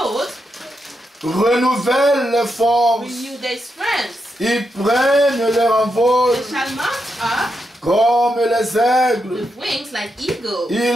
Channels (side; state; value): both; normal; correlation 0.84